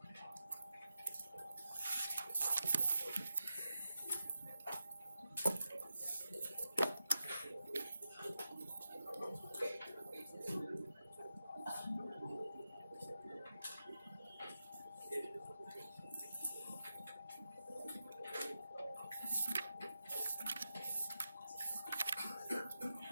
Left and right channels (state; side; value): inverted; both; correlation -0.89